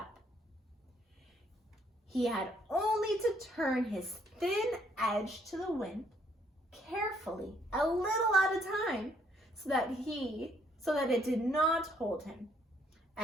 He had only to turn his thin edge to the wind carefully, a little at a time, so that it did not hold him,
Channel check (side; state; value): both; normal; correlation 0.68